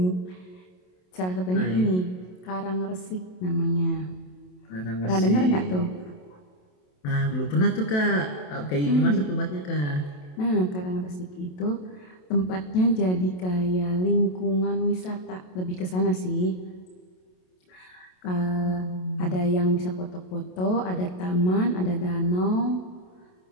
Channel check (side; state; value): right; late; 27 ms